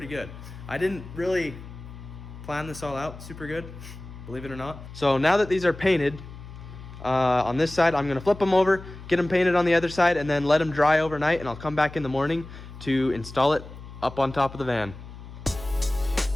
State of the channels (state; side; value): noise; left; hum, 15 dB below the sound